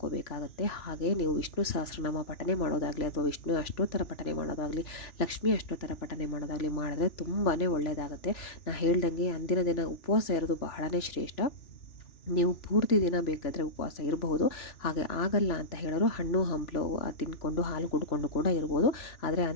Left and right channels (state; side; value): late; right; 3.0 ms